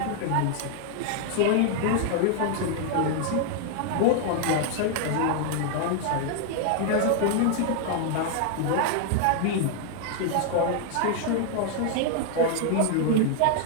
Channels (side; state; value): both; different; correlation 0.00